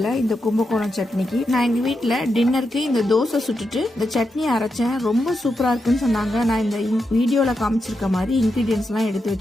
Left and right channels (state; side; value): normal; both; correlation 0.86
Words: இந்த கும்பகோணம் சட்னிக்கு. நான் எங்க வீட்டுல டின்னருக்கு இந்த தோசை சுட்டுட்டு இந்த சட்னி அரைச்சேன். ரொம்ப சூப்பரா இருக்குன்னு சொன்னாங்க. நான் இந்த வீடியோல காமிச்சிருக்க மாதிரி இன்கிரீடியன்ஸ் எல்லாம் எடுத்து